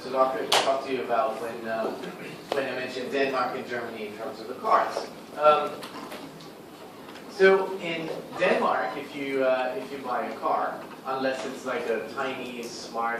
to talk to you about when I mentioned Denmark and Germany in terms of the cars. So in Denmark, if you buy a car, unless it's like a tiny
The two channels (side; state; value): both; identical; correlation 1.00